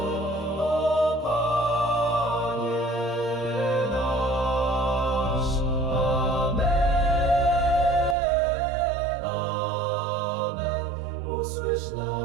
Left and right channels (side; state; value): left; drops out; at 8.2 s